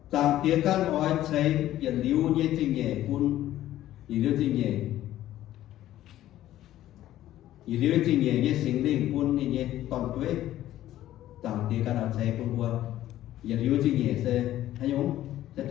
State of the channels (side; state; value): right; quieter; 13.6 dB